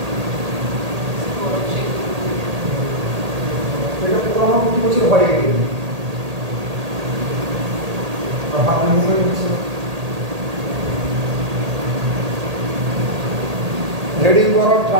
এটা পুরো আমার প্রতি বছর হয়ে গেছে, হাত মুভমেন্ট হচ্ছে। হেডিং করো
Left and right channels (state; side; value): late; left; 1.8 ms